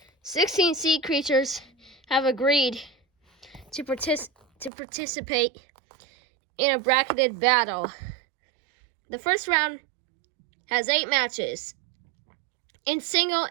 Sixteen sea creatures have agreed to participate in a bracketed battle. The first round has 8 matches in single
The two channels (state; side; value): drops out; left; at 4.7 s